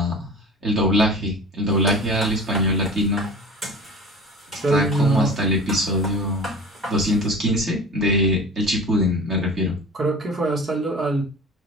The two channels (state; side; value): normal; both; correlation 0.38